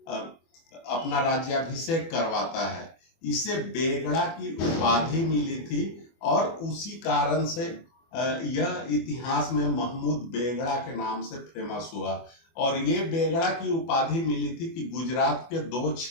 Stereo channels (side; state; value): right; late; 24 ms